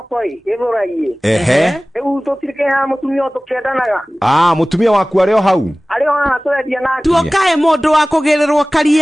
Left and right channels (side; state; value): both; normal; correlation 0.98